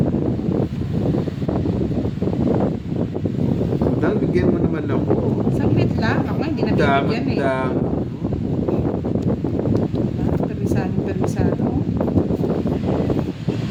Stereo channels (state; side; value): identical; both; correlation 1.00